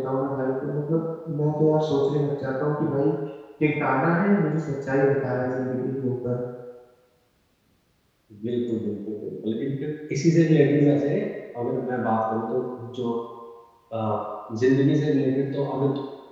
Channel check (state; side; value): identical; both; correlation 1.00